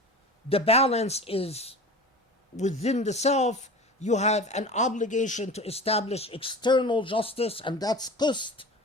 The balance is within the self. You have an obligation to establish external justice, and that's qist.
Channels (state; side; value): normal; both; correlation 0.35